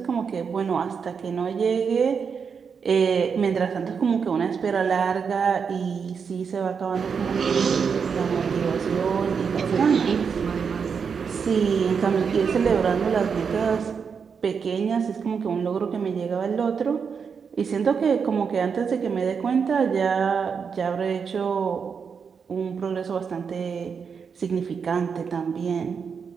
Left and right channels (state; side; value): quieter; left; 6.2 dB